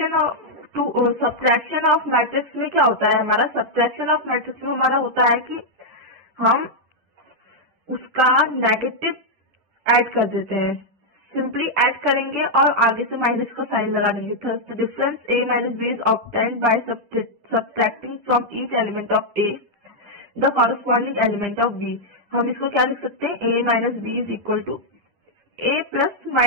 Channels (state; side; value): late; left; 10 ms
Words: ऑफ मैट्रिक्स में क्या होता है, हमारा सब्ट्रैक्शन ऑफ मैट्रिक्स में हमारा होता है कि हम उसका नेगेटिव ऐड कर देते हैं, सिंपली ऐड करेंगे और आगे से माइनस का साइन लगा देंगे। तो the difference a minus b is obtained by subtracting from each element of a the corresponding element of b। हम इसको क्या लिख सकते हैं, a minus b is equal to a plus